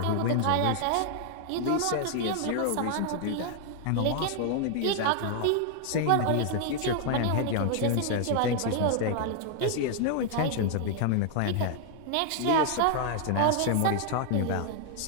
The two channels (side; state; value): both; different; correlation 0.00